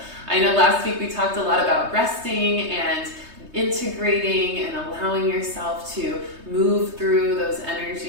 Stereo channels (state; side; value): late; left; 3.2 ms